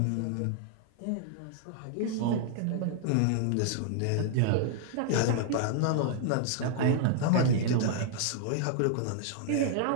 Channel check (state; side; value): different; both; correlation 0.00